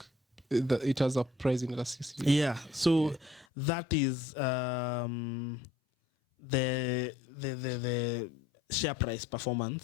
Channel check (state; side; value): drops out; right; at 3.5 s